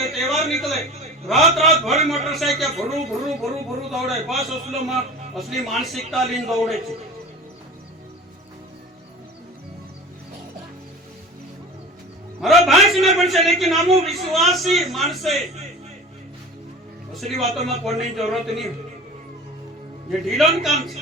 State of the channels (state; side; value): normal; both; correlation 0.36